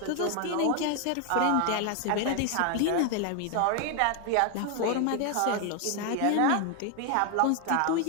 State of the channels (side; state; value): both; different; correlation 0.01